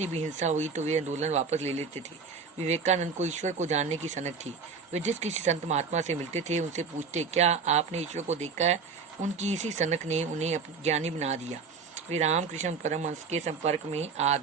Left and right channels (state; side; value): quieter; left; 5.2 dB